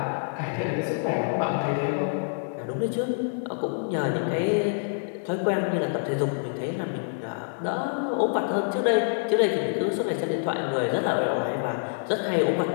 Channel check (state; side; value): silent; right; 60 dB below the other